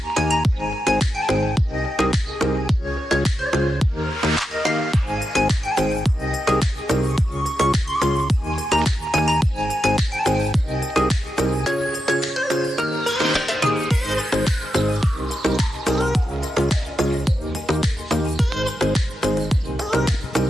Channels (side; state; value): both; normal; correlation 0.88